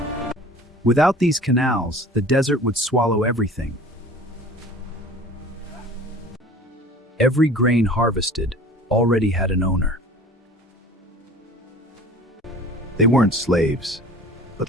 Without these canals, the desert would swallow everything. Every grain harvested already had an owner. They weren't slaves, but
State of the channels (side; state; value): both; normal; correlation 0.44